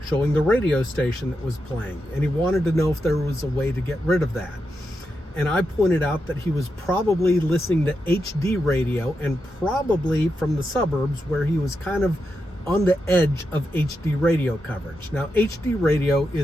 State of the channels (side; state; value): both; normal; correlation 0.86